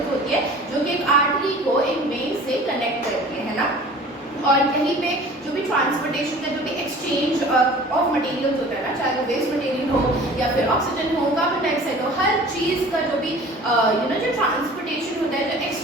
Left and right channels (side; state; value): both; normal; correlation 0.44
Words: होती है जो कि एक आर्टरी को एक वेन से कनेक्ट करती है ना। और यहीं पे जो भी ट्रांसपोर्टेशन का जो भी एक्सचेंज ऑफ मटेरियल्स होता है ना, चाहे वो वेस्ट मटेरियल हो या फिर ऑक्सीजन हो, कार्बन डाइऑक्साइड हो, हर चीज़ का जो भी जो ट्रांसपोर्टेशन होता है, जो